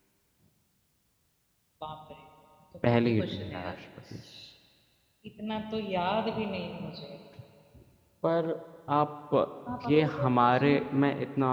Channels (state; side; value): identical; both; correlation 1.00